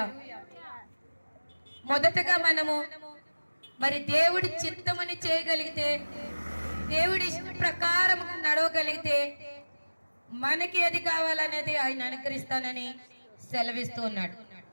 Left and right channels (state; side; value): inverted; both; correlation -1.00